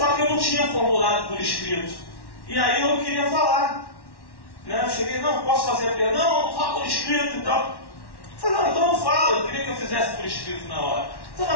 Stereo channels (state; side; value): late; right; 1.1 ms